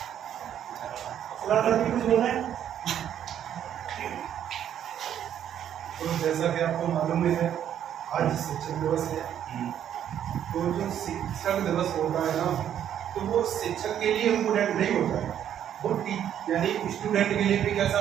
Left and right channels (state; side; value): quieter; left; 10.0 dB